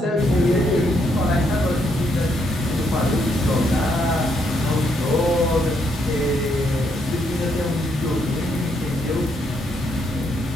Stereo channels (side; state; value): both; normal; correlation 0.75